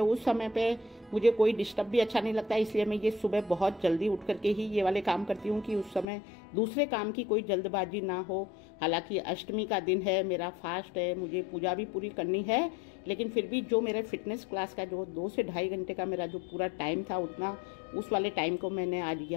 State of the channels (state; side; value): drops out; right; at 6.1 s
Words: उस समय पे मुझे कोई डिस्टर्ब भी अच्छा नहीं लगता, इसलिए मैं ये सुबह बहुत जल्दी उठ करके ही ये वाले काम करती हूँ कि उस समय दूसरे काम की कोई जल्दबाजी ना हो। हालांकि अष्टमी का दिन है, मेरा फास्ट है, मुझे पूजा भी पूरी करनी है, लेकिन फिर भी जो मेरे फिटनेस क्लास का जो 2 से ढाई घंटे का मेरा जो पूरा टाइम था, उतना उस वाले टाइम को मैंने आज